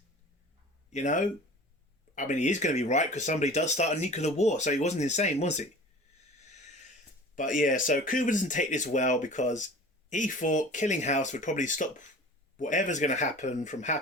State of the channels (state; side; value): normal; both; correlation 0.41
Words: You know? I mean, he is going to be right because somebody does start a nuclear war, so he wasn't insane, was he? But yeah, so Cooper doesn't take this well because he thought killing House would probably stop whatever's going to happen from